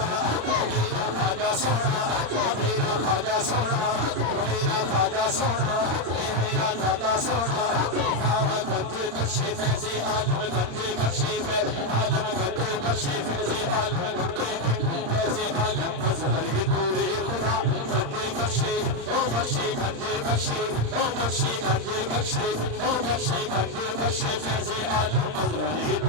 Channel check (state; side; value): late; left; 35 ms